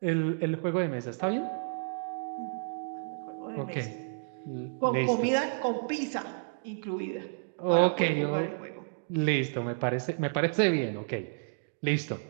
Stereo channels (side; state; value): left; silent; digital silence